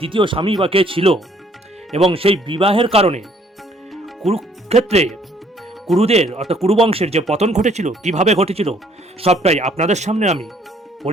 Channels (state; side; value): normal; both; correlation 0.62